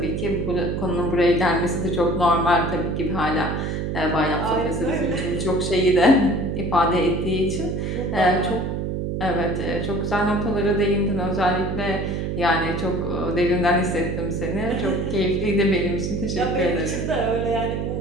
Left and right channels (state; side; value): noise; right; hum, 2 dB below the sound